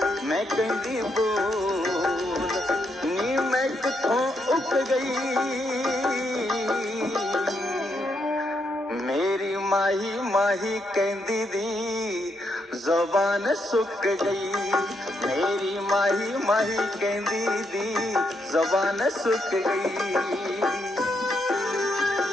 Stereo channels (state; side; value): normal; both; correlation 0.79